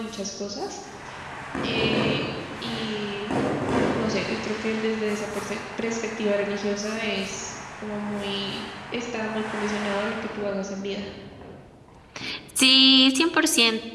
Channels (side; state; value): both; identical; correlation 1.00